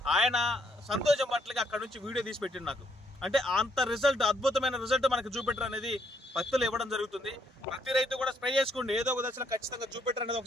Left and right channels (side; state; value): both; normal; correlation 0.71